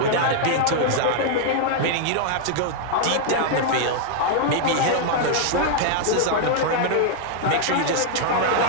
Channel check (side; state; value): both; different; correlation -0.01